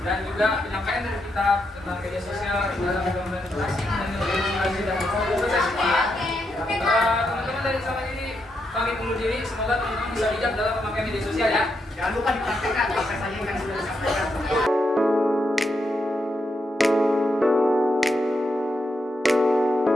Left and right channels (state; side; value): normal; both; correlation 0.82